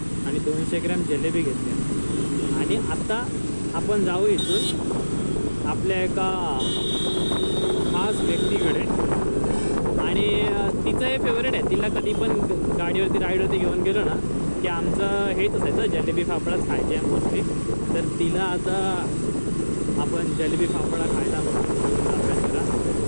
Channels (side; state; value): both; inverted; correlation -1.00